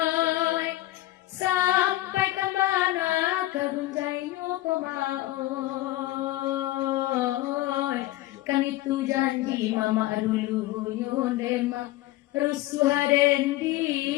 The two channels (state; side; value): quieter; right; 16.6 dB